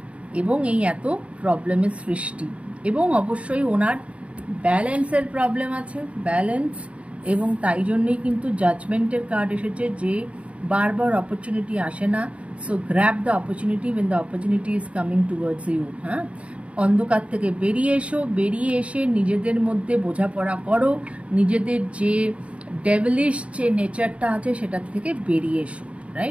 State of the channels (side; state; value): left; late; 0.063 ms